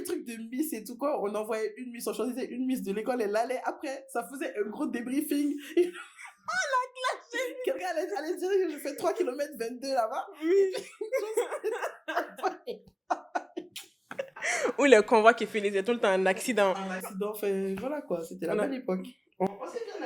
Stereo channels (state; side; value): identical; both; correlation 1.00